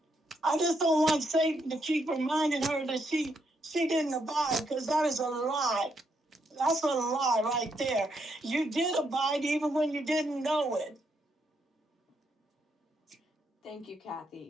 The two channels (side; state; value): both; normal; correlation 0.77